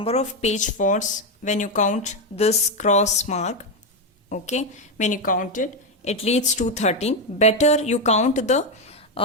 of page faults when you count this cross mark. Okay, when you count it, it leads to 13. Better you count the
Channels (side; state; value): both; normal; correlation 0.07